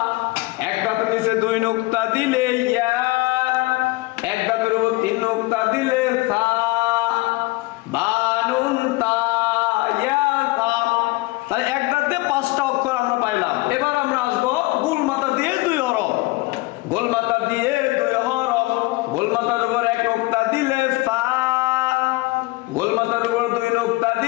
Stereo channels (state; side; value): quieter; right; 22.0 dB